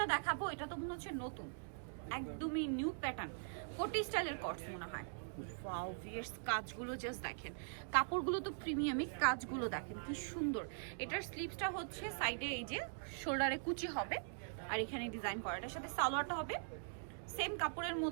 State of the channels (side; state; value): left; silent; digital silence